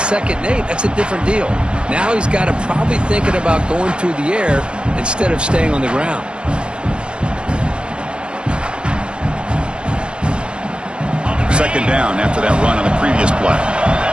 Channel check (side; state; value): left; late; 0.054 ms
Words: and 8, that's a different deal. Now he's got to probably thinking about going through the air instead of staying on the ground. Second down after that run on the previous play.